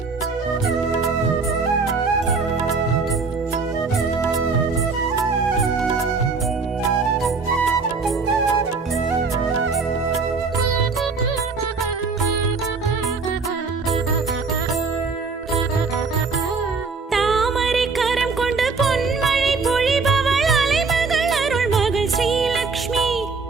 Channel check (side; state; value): left; quieter; 4.5 dB